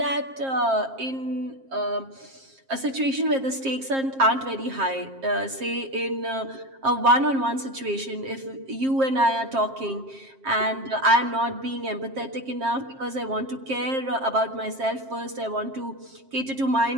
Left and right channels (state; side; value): late; left; 7.5 ms